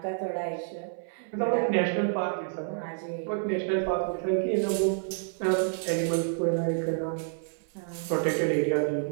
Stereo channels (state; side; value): silent; left; 57 dB below the other